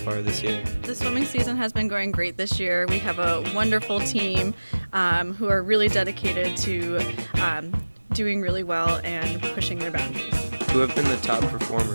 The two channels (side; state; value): both; inverted; correlation -1.00